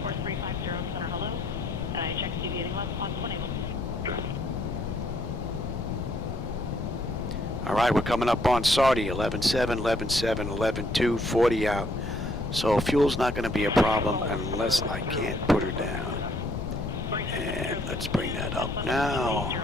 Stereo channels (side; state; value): left; noise; rumble, 5 dB below the sound